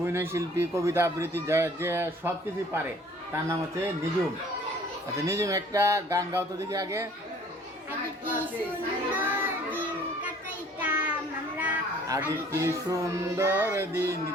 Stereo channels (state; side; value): normal; both; correlation 0.54